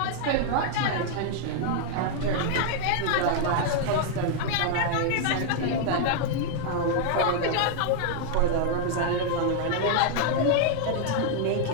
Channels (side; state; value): both; different; correlation 0.00